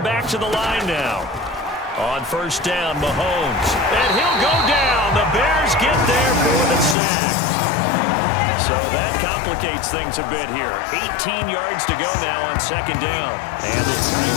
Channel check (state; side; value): drops out; right; at 7.0 s